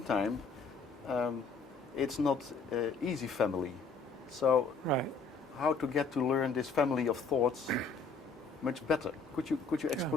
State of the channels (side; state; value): right; quieter; 4.5 dB